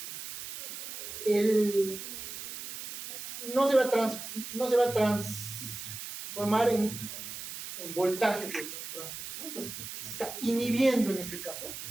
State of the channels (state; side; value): noise; right; hiss, 9 dB below the sound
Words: no se va a transformar en voltaje, ¿no? Entonces se está inhibiendo en este caso.